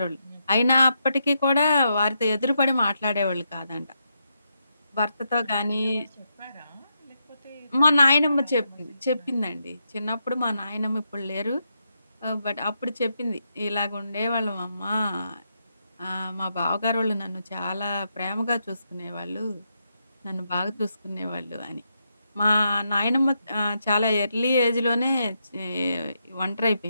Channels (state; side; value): inverted; both; correlation -0.82